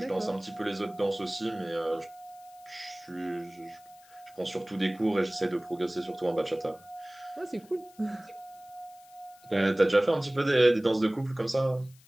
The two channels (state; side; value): noise; left; hiss, 26 dB below the sound